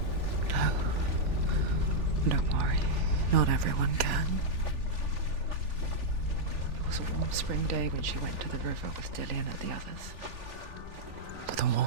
No. Don't worry. Not everyone can. It was a warm spring day when she went to the river with Dillian and the others. To the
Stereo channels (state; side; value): late; left; 3.4 ms